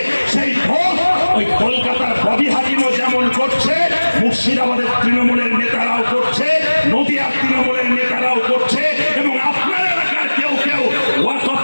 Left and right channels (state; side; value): inverted; both; correlation -1.00